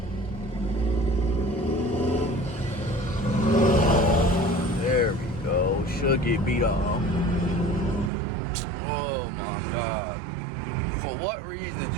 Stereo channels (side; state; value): left; drops out; at 8.1 s